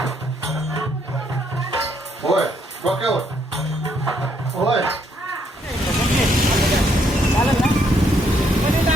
होय डोक्यावर होय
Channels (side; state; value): both; normal; correlation 0.71